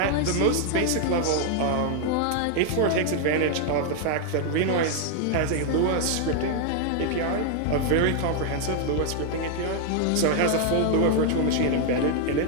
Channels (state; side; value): different; both; correlation 0.00